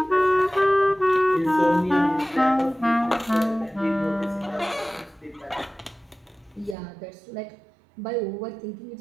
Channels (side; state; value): left; drops out; at 6.8 s